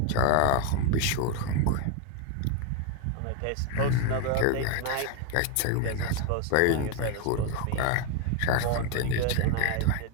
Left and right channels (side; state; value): both; different; correlation 0.01